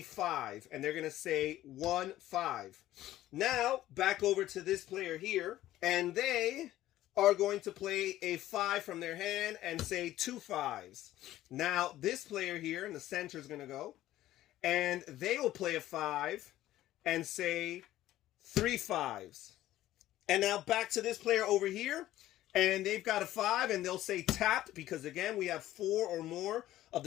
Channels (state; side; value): quieter; right; 14.3 dB